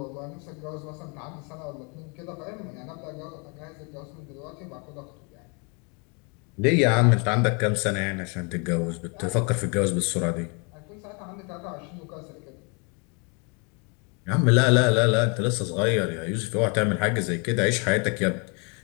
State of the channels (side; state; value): right; quieter; 33.6 dB